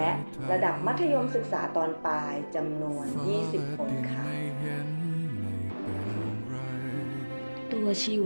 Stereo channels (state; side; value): inverted; both; correlation -1.00